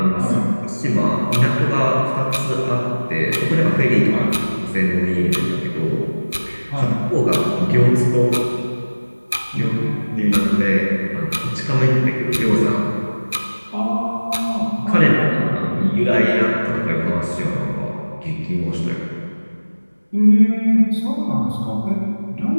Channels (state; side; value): inverted; both; correlation -1.00